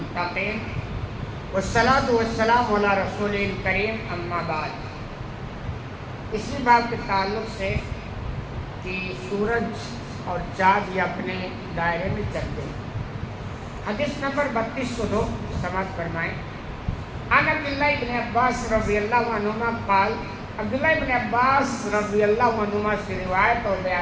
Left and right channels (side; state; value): both; identical; correlation 1.00